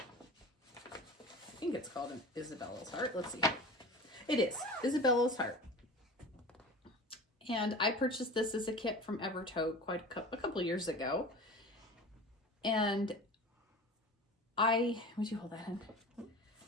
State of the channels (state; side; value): normal; both; correlation 0.35